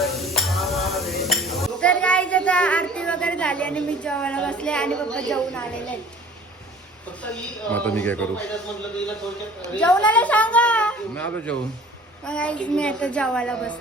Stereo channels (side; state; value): both; normal; correlation 0.47